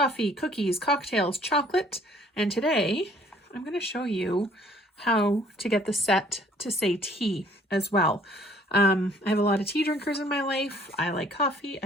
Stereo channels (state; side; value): normal; both; correlation 0.58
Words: cookies, cocktails, chocolate, and today I'm going to show you how to get the set to say tea as well. I have a lot of tea drinkers in my life. I like coffee,